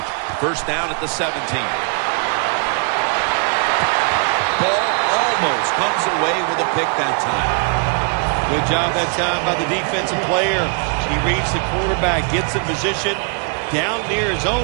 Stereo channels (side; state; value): left; quieter; 38.7 dB